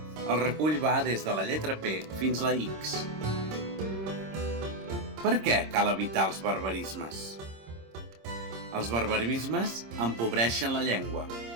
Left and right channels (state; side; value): late; left; 26 ms